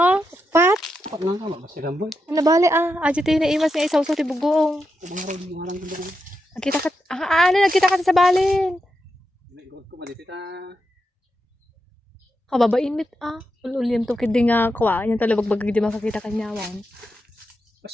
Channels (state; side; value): normal; both; correlation 0.86